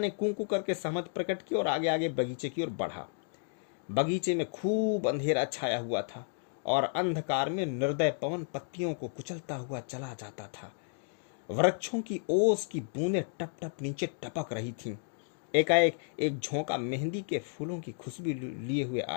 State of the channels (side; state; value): right; silent; digital silence